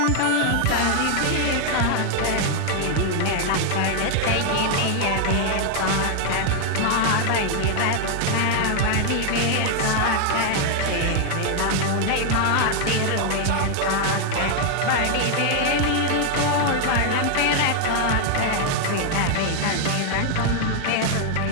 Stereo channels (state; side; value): different; both; correlation 0.00